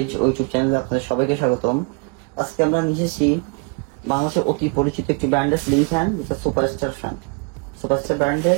ও ইউটিউব চ্যানেলে আপনাদের সবাইকে স্বাগতম। আজকে আমরা নিয়ে এসেছি বাংলাদেশের অতি পরিচিত একটি ব্র্যান্ডের সিলিং ফ্যান, যেটা সুপারস্টার ফ্যান। সুপারস্টার ব্র্যান্ডের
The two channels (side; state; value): left; quieter; 33.8 dB